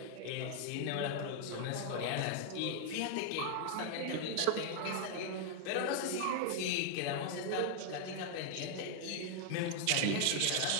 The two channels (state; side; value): different; both; correlation 0.00